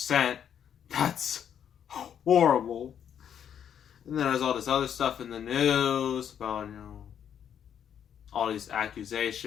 That's horrible. And then there's all this other stuff in the news about, all these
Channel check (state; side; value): quieter; right; 8.9 dB